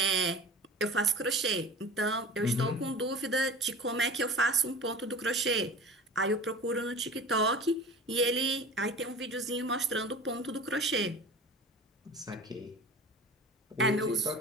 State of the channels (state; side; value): normal; both; correlation 0.38